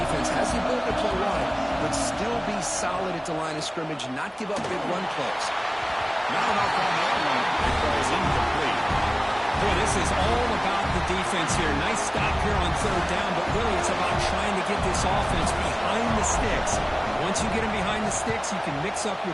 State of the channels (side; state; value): both; identical; correlation 1.00